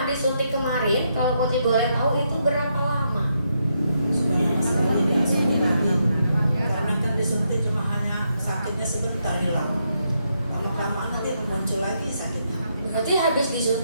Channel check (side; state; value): both; inverted; correlation -0.79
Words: disuntik kemarin, kalau Putri boleh tahu itu berapa lama? Sudah lama sekali tidak suntik lagi. Karena kan disuntik cuma hanya sakitnya sebentar hilang. Lama-kelamaan nanti muncul lagi sakitnya. Berarti habis